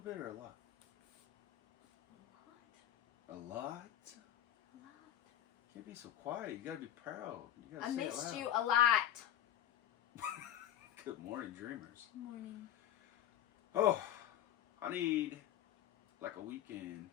or a lot? A lot. A lot? A lot. Can't be so quiet. You gotta be proud. You gotta I say it missed loud. you a lot. Good morning, dreamers. Good morning. Oh, I need like a weekend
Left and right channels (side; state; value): right; quieter; 11.6 dB